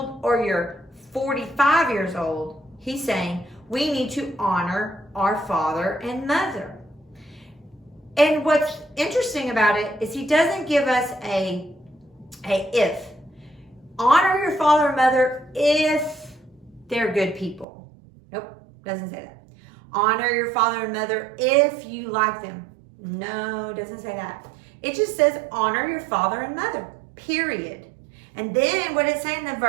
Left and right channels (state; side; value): drops out; left; at 17.7 s